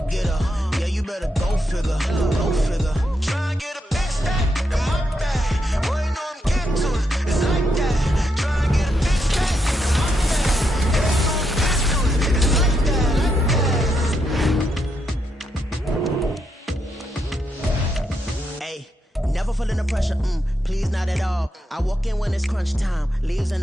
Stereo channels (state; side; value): normal; both; correlation 0.81